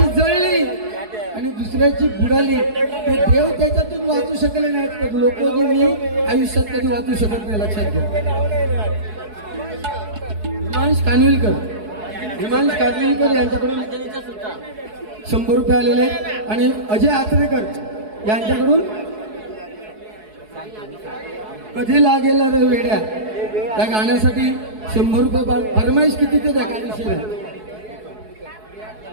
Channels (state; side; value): late; left; 4.7 ms